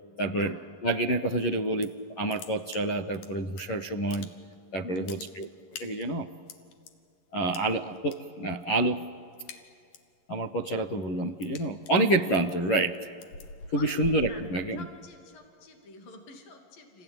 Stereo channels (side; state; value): right; late; 11 ms